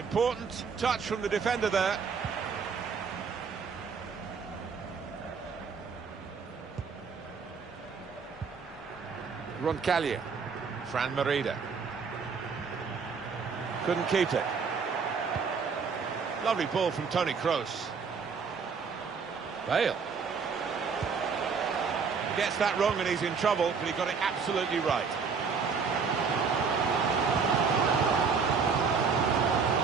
touch from the defender there. Roncallier. Fran Merida. Couldn't keep it. Lovely ball from Toni Kroos. Bale. Gets that wrong and he's in trouble, but he got it absolutely right.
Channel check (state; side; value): quieter; left; 5.6 dB